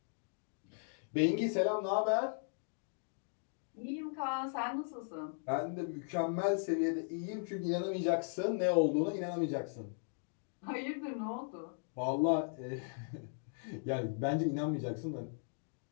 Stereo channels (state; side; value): silent; right; digital silence